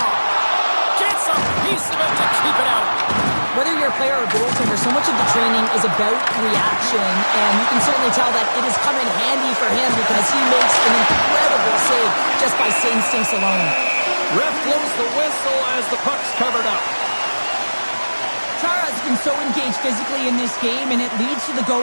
Gets a piece of it to keep it out. Whether you're a player or a goaltender, so much of the training is about reaction, and you can certainly tell that it is coming handy for him because he makes an incredible save just by instincts alone. Ref blows the whistle as the puck's covered up. Chara's been so engaged physically in this game, and it leads to the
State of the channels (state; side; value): inverted; both; correlation -1.00